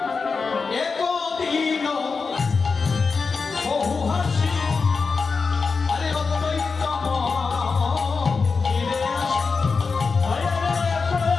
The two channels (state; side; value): quieter; right; 4.7 dB